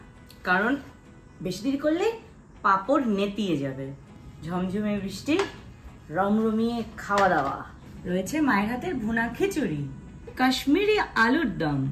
কারণ বেশি দেরি করলে পাঁপড় নেতিয়ে যাবে। ঝমঝমে বৃষ্টি, রমরমিয়ে খাওয়া দাওয়া। রয়েছে মায়ের হাতের ভুনা খিচুড়ি, কাশ্মীরি আলুর দম,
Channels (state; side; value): identical; both; correlation 1.00